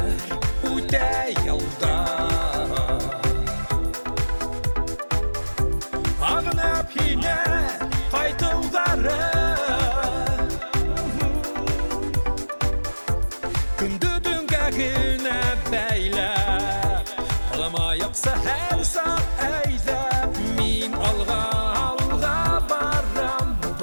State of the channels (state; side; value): inverted; both; correlation -1.00